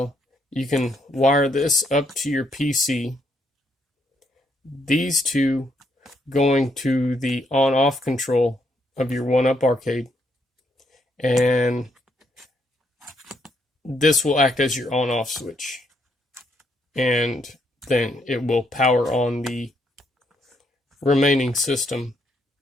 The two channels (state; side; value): normal; both; correlation 0.74